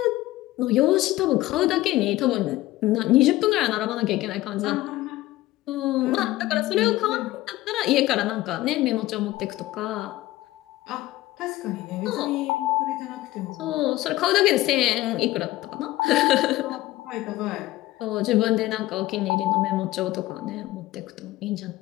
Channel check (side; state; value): right; quieter; 17.0 dB